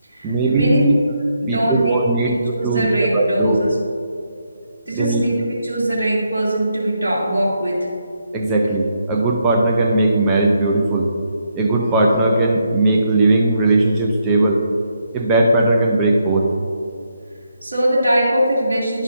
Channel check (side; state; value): both; inverted; correlation -0.78